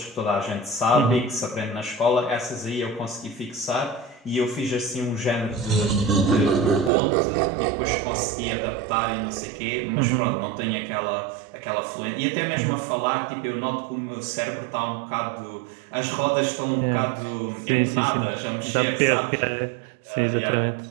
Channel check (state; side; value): drops out; left; at 6.9 s